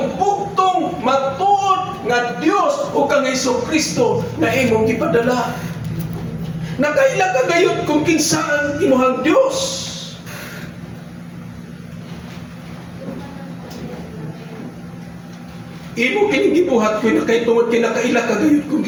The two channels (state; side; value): identical; both; correlation 1.00